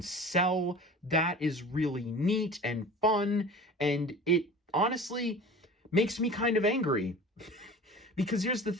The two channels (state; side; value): normal; both; correlation 0.39